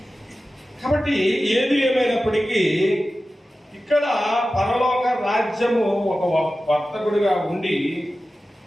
కాబట్టి ఏది ఏమైనప్పటికీ ఇక్కడ పరలోక రాజ్యము ఒక వర్తకుడిగా ఉండి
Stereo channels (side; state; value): both; normal; correlation 0.94